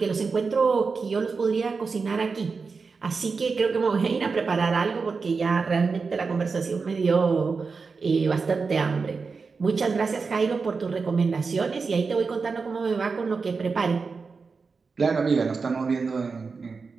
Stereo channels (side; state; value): left; quieter; 4.7 dB